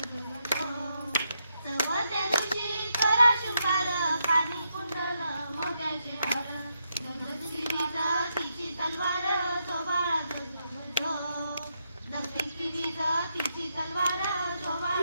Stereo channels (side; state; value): both; inverted; correlation -0.81